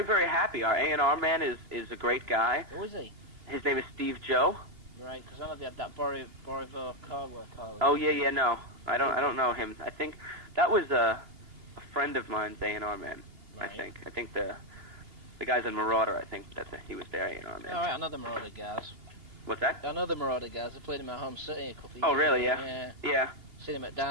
very happy. Our A&R man is a great guy. Who is he? His name is Steve Joe. Right, because I know they had that Borivo Cardwell. Oh, yeah, no. I don't know him. I think that was a friend of mine's A&R man, right. I think the guys in Marauder, I think he was their A&R man. All right, I know the Marauder guys. What's that? I know the Marauder guys. I played in my home city a couple of years Oh, really? ago. Yeah. Yeah. Seen him at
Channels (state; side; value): late; left; 2.8 ms